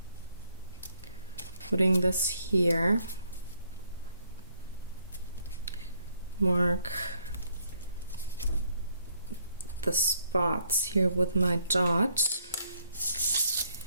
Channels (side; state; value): both; inverted; correlation -0.69